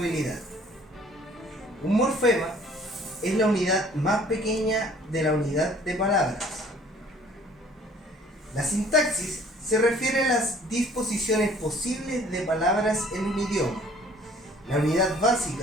Un morfema es la unidad más pequeña de la unidad de palabras. La sintaxis se refiere a las disposiciones posibles de palabras en un idioma. La unidad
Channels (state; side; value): normal; both; correlation 0.55